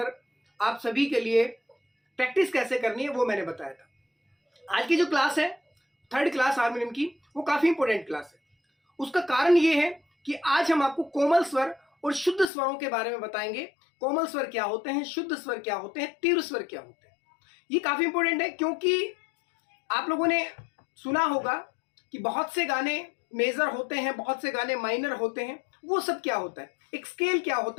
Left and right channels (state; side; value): drops out; right; at 12.5 s